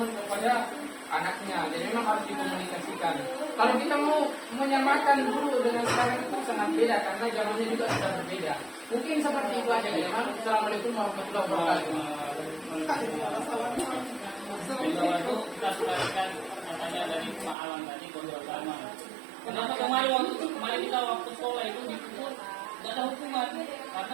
kepada anaknya. Jadi memang harus dikomunikasikan. Kalau kita mau menyamakan dulu dengan sekarang itu sangat beda karena zamannya juga sudah berbeda. Mungkin seperti itu aja ya. Assalamualaikum warahmatullahi wabarakatuh. Bahwa itu kita selesaikan katanya dari Pak Alam tadi kontrol sama. Kenapa kemarin kita waktu sekolah itu dipukul nggak ada hukuman karena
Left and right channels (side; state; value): left; drops out; at 17.6 s